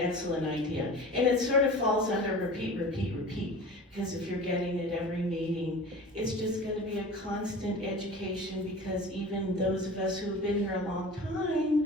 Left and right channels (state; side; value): normal; both; correlation 0.37